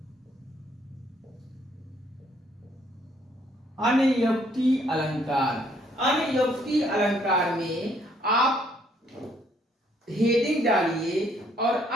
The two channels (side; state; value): both; normal; correlation 0.66